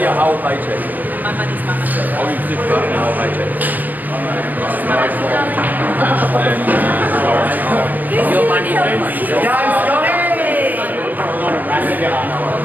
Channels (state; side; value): late; left; 0.084 ms